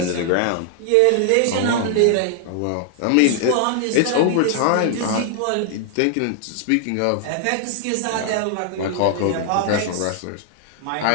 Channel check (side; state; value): both; different; correlation 0.00